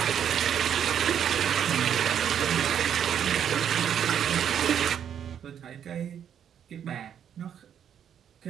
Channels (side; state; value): left; quieter; 8.9 dB